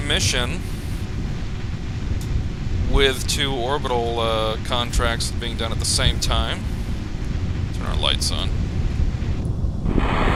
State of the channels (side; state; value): both; identical; correlation 1.00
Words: with 2 orbital contracts being done at the same time. Turn our lights on.